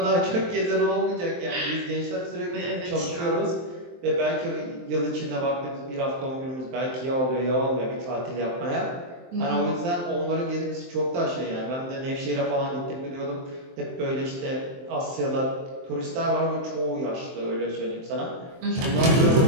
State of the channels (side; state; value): left; late; 23 ms